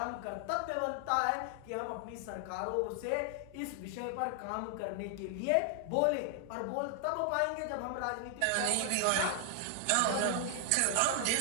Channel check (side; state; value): both; different; correlation 0.00